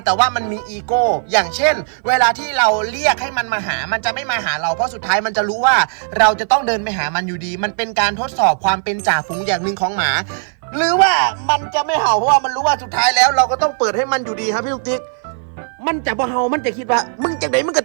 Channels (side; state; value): left; silent; 57 dB below the other